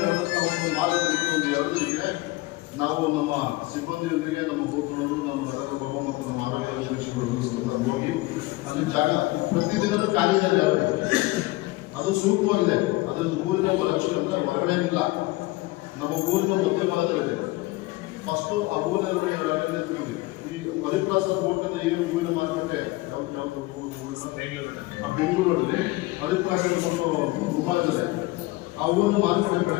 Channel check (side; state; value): right; quieter; 20.3 dB